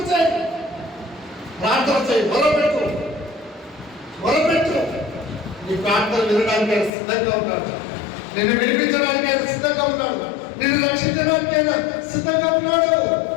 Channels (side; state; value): right; drops out; at 6.9 s